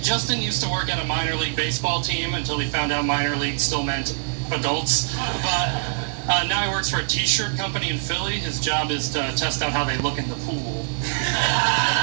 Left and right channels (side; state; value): left; silent; digital silence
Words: Justin used to work at a minor league baseball team until he found out minor league still meant adults. But now he works for a t-shirt company in Philly. His job is to test out how they look in the pool.